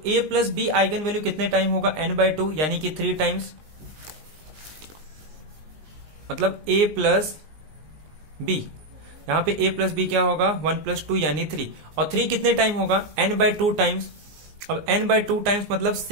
a plus b eigen value कितने टाइम होगा n/2 यानी कि 3 टाइम्स, मतलब a प्लस b, यहां पे a प्लस b क्या होगा 1 प्लस 2 यानी 3, और 3 कितने टाइम होगा n/2 टाइम्स। अब n/2 टाइम्स मतलब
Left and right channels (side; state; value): left; late; 19 ms